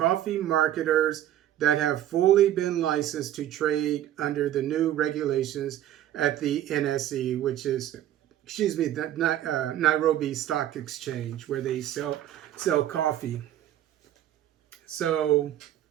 marketers that have fully been licensed to trade under the new regulations at the NSE, which is, the Nairobi Stock Exchange, where they sell coffee. So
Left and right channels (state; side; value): quieter; left; 12.1 dB